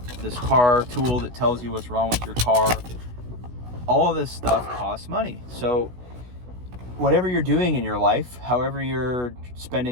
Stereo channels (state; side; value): late; left; 16 ms